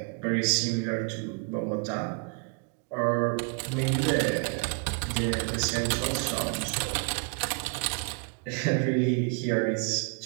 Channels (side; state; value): left; quieter; 38.4 dB